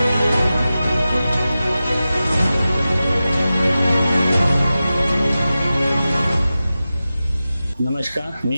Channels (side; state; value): both; inverted; correlation -0.94